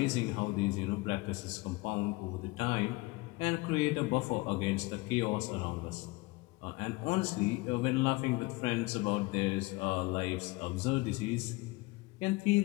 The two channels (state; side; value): quieter; right; 22.9 dB